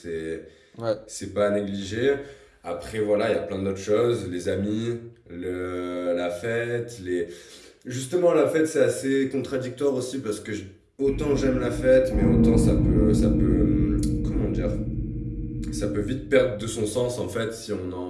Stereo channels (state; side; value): identical; both; correlation 1.00